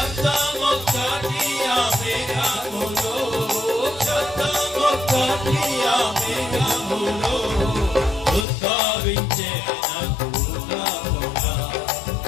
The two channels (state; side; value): drops out; right; at 8.5 s